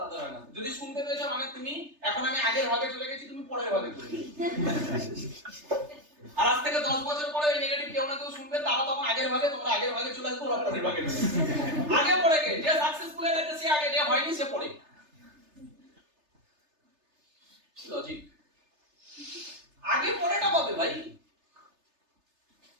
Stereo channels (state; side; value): late; left; 3.3 ms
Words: তাদের হয় না। যদি শুনতে পেয়েছো মানে তুমি এখন আমি আগের ভাগে চলে গেছি, তুমি পরের ভাগে চলে গেছো। আর আজ থেকে 10 বছর পরে এই নেগেটিভ কেউ না কেউ শুনবে, তারা তখন আগের ভাগে, তোমরা আগের ভাগে চলে আসবে, ওরা পরের ভাগে চলে আসবে। আগে পরে কে, যে সাকসেসফুল হয়ে গেছে সে আগে, যে হয়নি সে পরে। লজিক, আগে পরেটা পাবে ভাই।